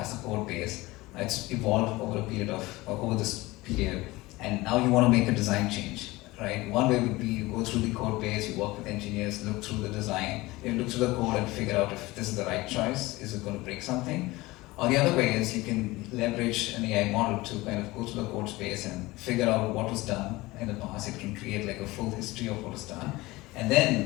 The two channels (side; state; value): right; quieter; 20.4 dB